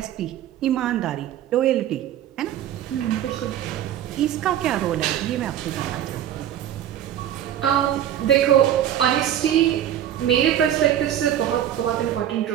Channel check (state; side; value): quieter; left; 11.0 dB